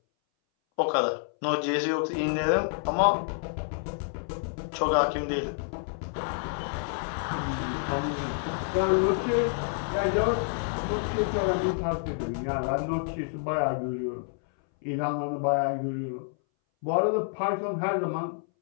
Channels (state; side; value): silent; right; 59 dB below the other